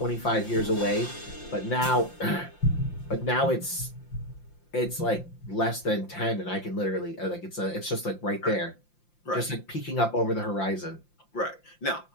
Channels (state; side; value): late; right; 5.8 ms